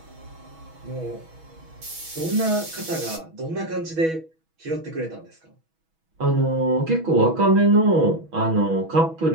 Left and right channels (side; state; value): left; late; 6.2 ms